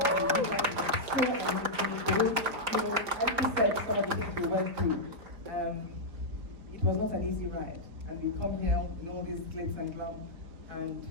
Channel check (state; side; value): late; left; 4.4 ms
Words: It was not an easy ride, and we come here with all these glitz and glam, and